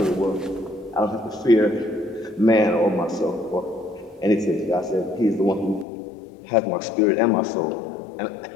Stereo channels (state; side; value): drops out; right; at 5.9 s